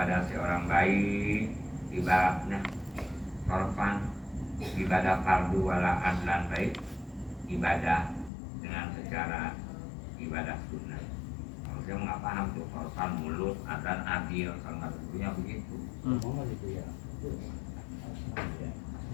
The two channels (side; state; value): right; drops out; at 8.3 s